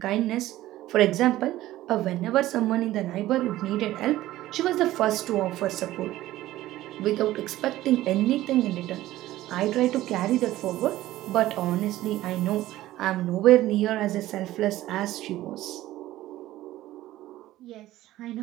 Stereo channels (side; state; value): left; quieter; 15.4 dB